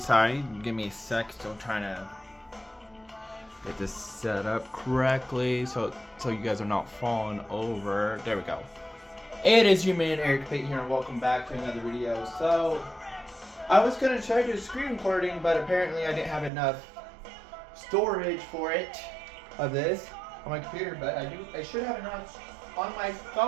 sorry, give me a sec, still trying to get this set up correctly so you guys are not falling over. There we go. It is your man Eric Pate here and welcome back to another video. So, I was going to try to do a screen recording, but apparently I didn't have enough storage for it, of this, on my computer, but I should have enough on my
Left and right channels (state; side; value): drops out; left; at 16.5 s